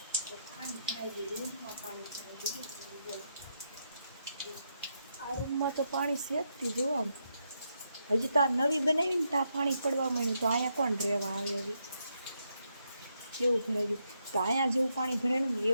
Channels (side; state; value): both; inverted; correlation -0.80